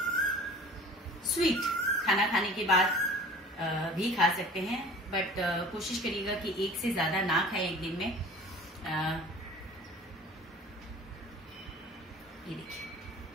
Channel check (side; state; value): both; normal; correlation 0.44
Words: स्वीट खाना खाने के बाद भी खा सकते हैं, बट कोशिश करिएगा कि एक से ज्यादा ना खाए एक दिन में। ये देखिए,